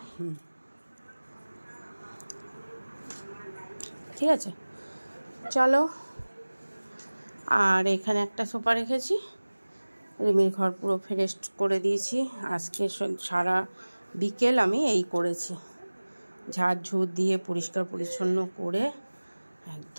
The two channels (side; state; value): both; inverted; correlation -1.00